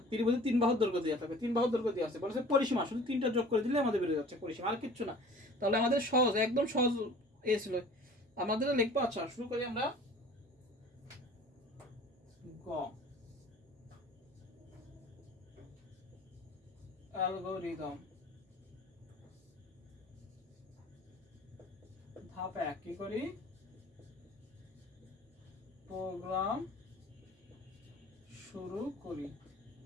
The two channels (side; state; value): both; normal; correlation 0.46